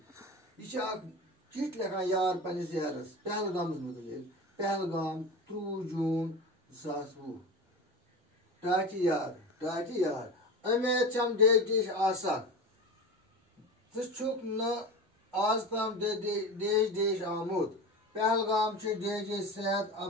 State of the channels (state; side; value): normal; both; correlation 0.28